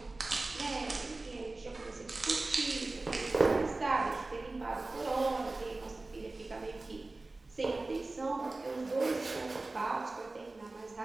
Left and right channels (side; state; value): left; quieter; 3.2 dB